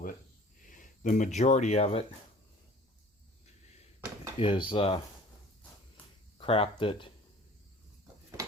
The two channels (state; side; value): normal; both; correlation 0.48